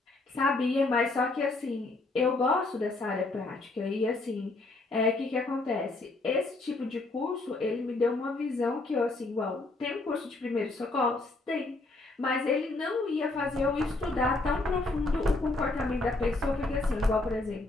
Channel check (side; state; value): right; quieter; 3.1 dB